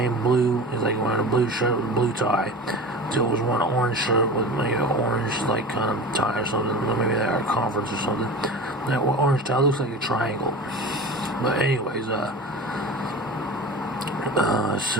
blue. He's like wearing a blue shirt with a blue tie. Dill was wearing an orange shirt with maybe an orange like kind of tie or something. Maybe they're at a conference or something. That orange tie looks like a triangle. But anyways,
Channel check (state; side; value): normal; both; correlation 0.32